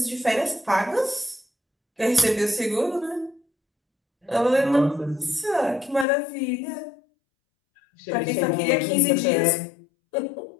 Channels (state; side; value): drops out; right; at 6.1 s